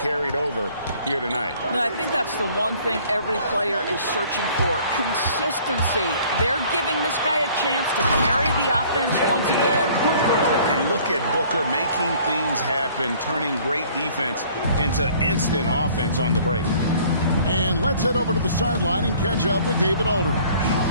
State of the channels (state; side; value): inverted; both; correlation -0.54